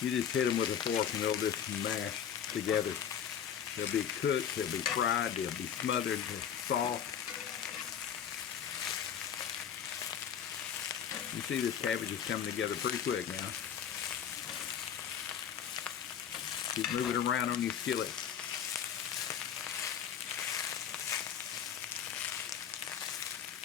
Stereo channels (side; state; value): right; quieter; 8.7 dB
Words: you just hit them with a fork and they'll just mash together. They'll be cooked, they'll be fried, they'll be smothered, they're soft. You see this cabbage is coming together pretty quick now. Keep moving around on your skillet.